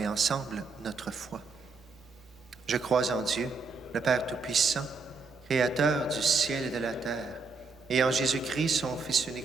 ensemble notre foi. Je crois en Dieu, le Père Tout-Puissant, Créateur du ciel et de la terre, et en Jésus-Christ, son Fils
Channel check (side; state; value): left; quieter; 4.4 dB